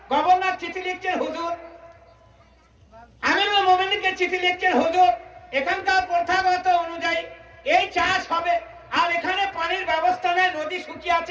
গভর্নর চিঠি লিখছেন, হুজুর আমিরুল মুমিনিনকে চিঠি লিখছেন, হুজুর এখানকার প্রথাগত অনুযায়ী এই চাষ হবে আর এখানে পানির ব্যবস্থা নেই, নদী শুকিয়ে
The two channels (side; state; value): both; identical; correlation 1.00